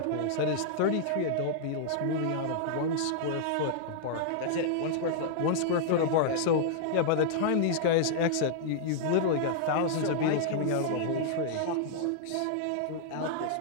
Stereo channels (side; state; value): both; different; correlation -0.01